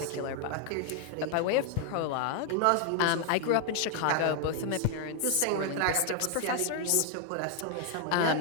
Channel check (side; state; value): both; different; correlation 0.00